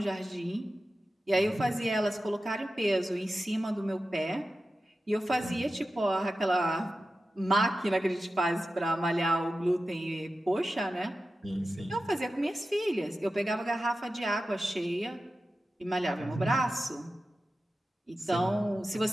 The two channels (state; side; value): normal; both; correlation 0.93